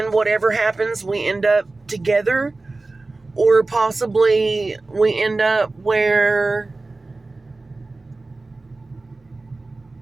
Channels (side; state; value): left; quieter; 3.3 dB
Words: whatever happens, we end up together, or possibly we end up where,